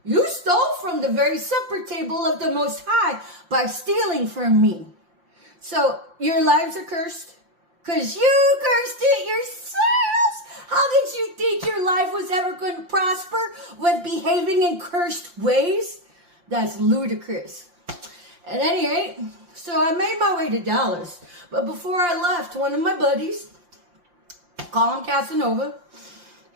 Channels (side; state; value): left; late; 5.7 ms